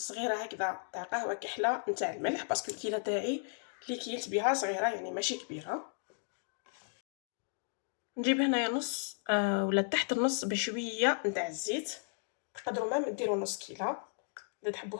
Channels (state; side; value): silent; right; 55 dB below the other